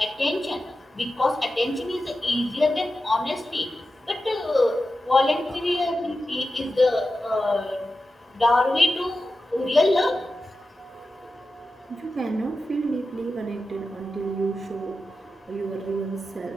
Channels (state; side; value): normal; both; correlation 0.92